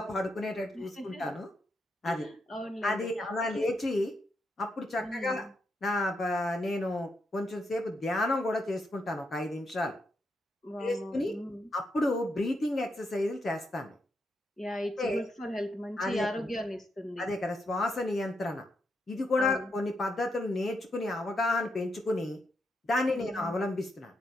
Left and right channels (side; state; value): both; normal; correlation 0.81